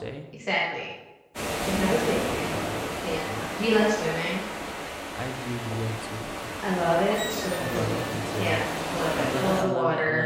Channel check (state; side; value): identical; both; correlation 1.00